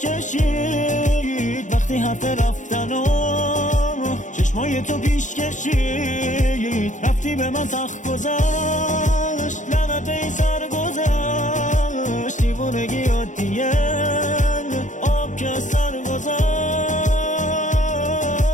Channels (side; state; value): right; late; 0.36 ms